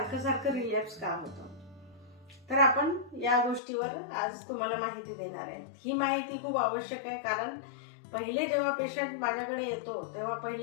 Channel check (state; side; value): drops out; right; at 3.6 s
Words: सारखं रिलॅप्स का होतं. तर आपण या गोष्टीवर आज तुम्हाला माहिती देणार आहे. ही माहिती खूप आवश्यक आहे, कारण पहिले जेव्हा पेशंट माझ्याकडे येतो तेव्हा